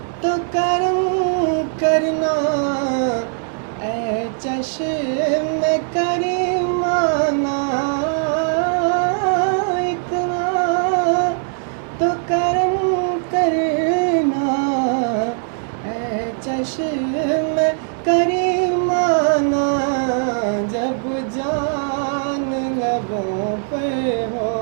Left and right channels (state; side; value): silent; left; digital silence